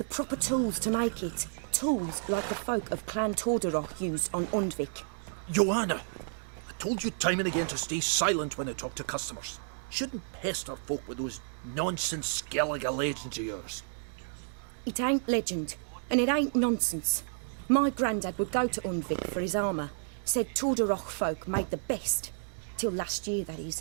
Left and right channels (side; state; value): left; silent; digital silence